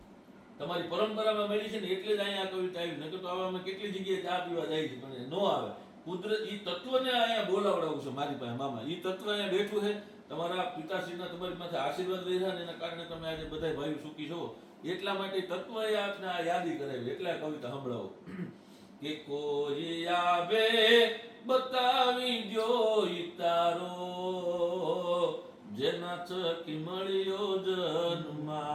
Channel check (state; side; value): identical; both; correlation 1.00